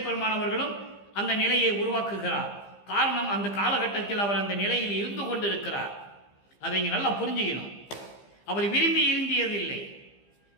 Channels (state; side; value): late; right; 15 ms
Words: பெருமானவர்களும் அந்த நிலையை உருவாக்குகிறார். காரணம், அந்த காலகட்டத்தில் அவர் அந்த நிலையில் இருந்து கொண்டிருக்கிறார். அதை இங்கே நல்லா புரிஞ்சுக்கணும். அவர் விரும்பி இருந்தியதில்லை.